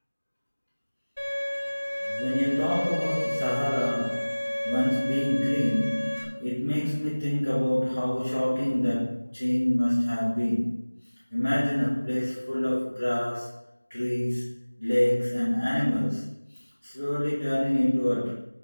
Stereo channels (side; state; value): both; inverted; correlation -1.00